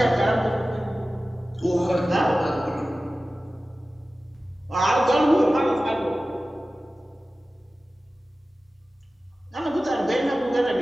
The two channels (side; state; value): both; normal; correlation 0.96